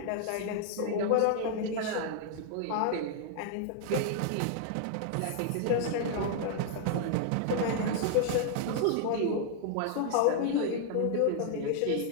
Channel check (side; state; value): both; different; correlation -0.01